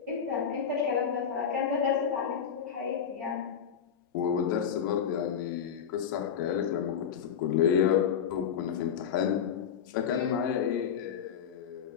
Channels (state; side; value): quieter; right; 7.9 dB